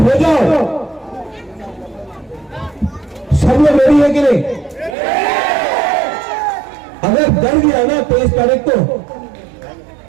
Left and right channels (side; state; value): left; drops out; at 5.0 s